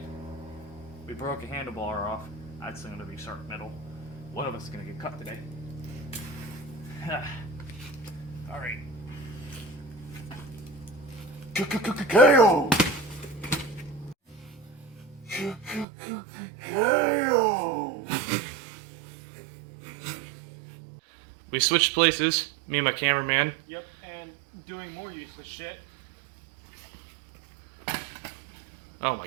We broke a handlebar off. That's gonna be sharp metal. One of us is gonna get cut today. Alright. KO! KO! We switched places, me and my cameraman. Yep, and doing more useless shit. Oh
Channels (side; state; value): left; drops out; at 15.9 s